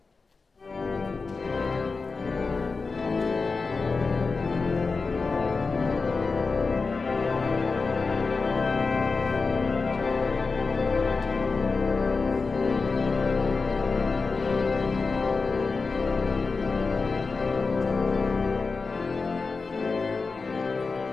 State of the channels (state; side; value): quieter; right; 4.3 dB